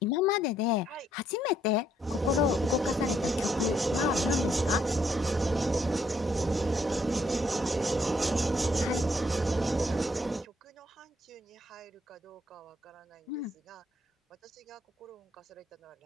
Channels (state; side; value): normal; both; correlation 0.72